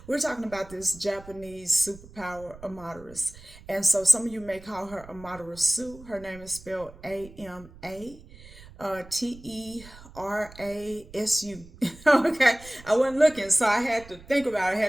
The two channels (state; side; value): noise; right; rumble, 20 dB below the sound